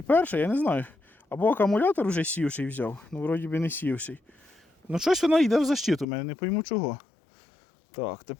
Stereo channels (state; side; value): drops out; right; at 6.1 s